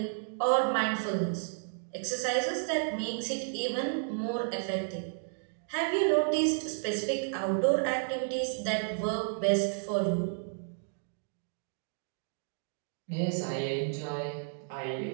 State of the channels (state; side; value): silent; left; digital silence